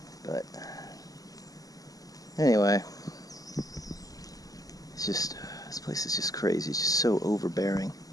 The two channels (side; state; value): right; late; 0.17 ms